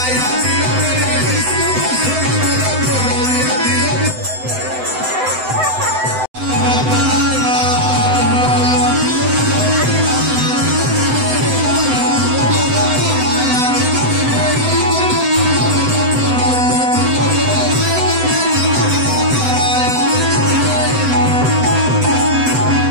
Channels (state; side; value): late; left; 7.9 ms